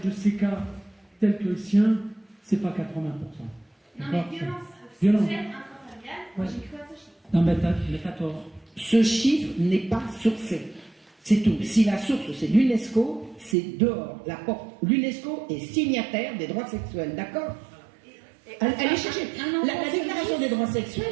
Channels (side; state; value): left; drops out; at 13.6 s